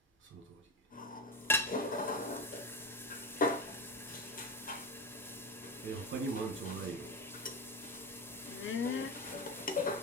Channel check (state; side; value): normal; both; correlation 0.20